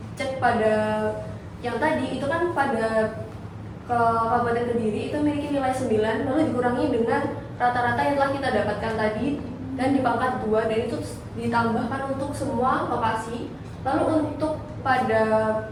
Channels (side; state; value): both; identical; correlation 1.00